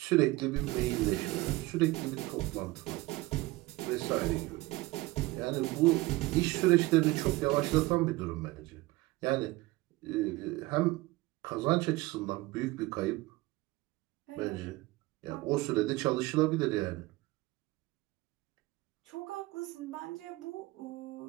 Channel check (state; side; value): quieter; left; 20.0 dB